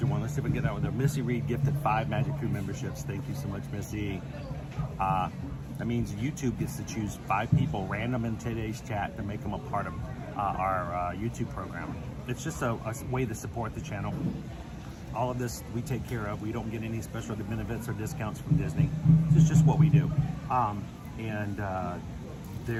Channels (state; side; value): identical; both; correlation 1.00